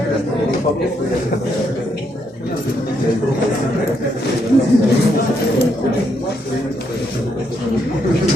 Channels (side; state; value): both; normal; correlation 0.76